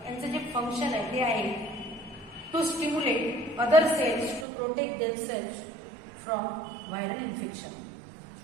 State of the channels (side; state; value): left; drops out; at 4.5 s